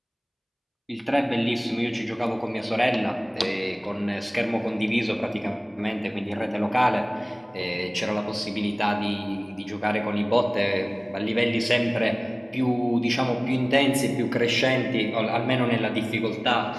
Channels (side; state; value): both; identical; correlation 1.00